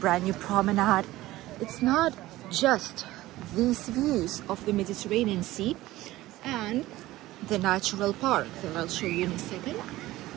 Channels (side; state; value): left; quieter; 16.9 dB